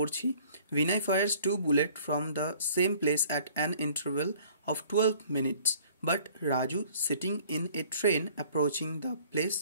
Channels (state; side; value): inverted; both; correlation -0.54